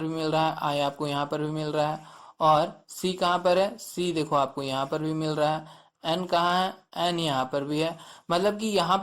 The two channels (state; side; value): identical; both; correlation 1.00